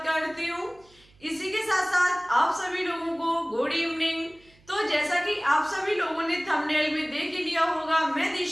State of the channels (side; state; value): right; noise; hum, 30 dB below the sound